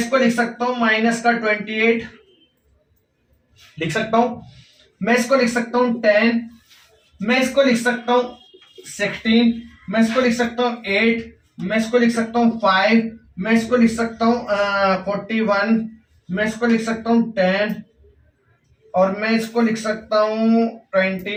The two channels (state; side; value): identical; both; correlation 1.00